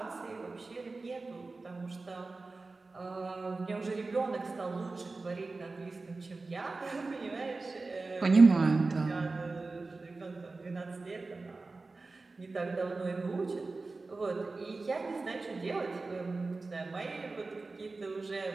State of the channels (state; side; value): quieter; left; 3.6 dB